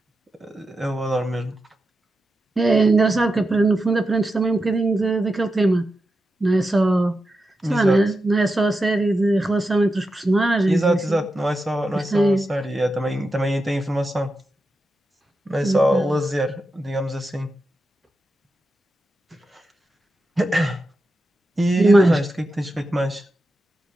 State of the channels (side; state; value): both; normal; correlation 0.89